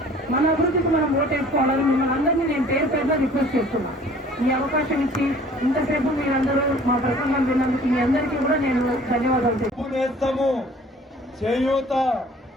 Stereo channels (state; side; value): normal; both; correlation 0.51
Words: మన అభివృద్ధికి మనం ఓటేసుకోవాలని మిమ్మల్ని అందరినీ నేను పేరుగా రిక్వెస్ట్ చేస్తున్నాను. ఈ అవకాశం ఇచ్చి ఇంతసేపు మీరందరూ మా ప్రసంగం విన్నందుకు మీ అందరికీ కూడా నేను ధన్యవాదాలు చేస్తాము. చేయూత,